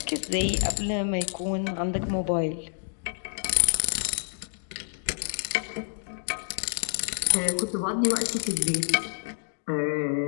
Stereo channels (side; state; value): right; silent; digital silence